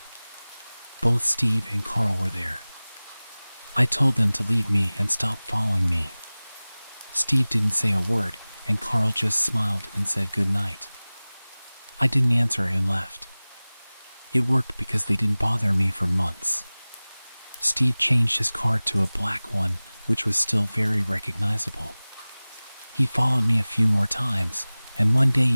Both Steve and Carl were there. I told them to leave me and stop following me. Steve didn't say a word, and Carl just smiled and said good night. I didn't answer and left. It worked because they didn't bother me for months. Steve changed his car to a black one, which was still very recognizable. He followed me a few more times, and one day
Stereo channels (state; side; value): inverted; both; correlation -0.99